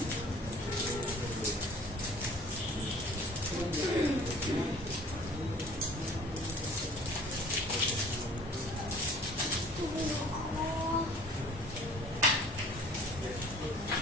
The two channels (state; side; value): normal; both; correlation 0.50